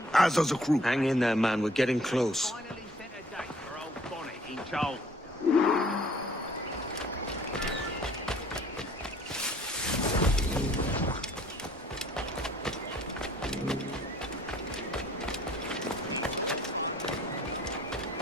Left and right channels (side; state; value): both; normal; correlation 0.56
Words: As does the crew. Hang in there, man. We're getting close. Finally set a date for old Bonnet in Charles.